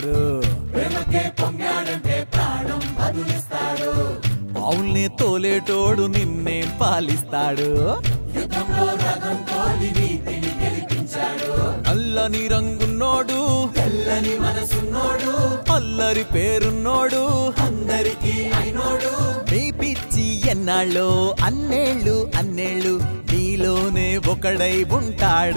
ప్రేమకే పొంగాడంటే ప్రాణం బదులిస్తాడు. ఆవుల్ని తోలేటోడు నిన్నేం పాలిస్తాడు. యుద్ధంలో రథం తోలి నీతిని గెలిపించాడు. నల్లని రంగున్నోడు తెల్లని మనసున్నోడు. అల్లరి పేరున్నోడు అందరికీ అయినోడు. నీ పిచ్చి ఎన్నాళ్ళో అన్నేళ్ళు అన్నేళ్ళు నీలోనే ఒకడై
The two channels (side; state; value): both; inverted; correlation -1.00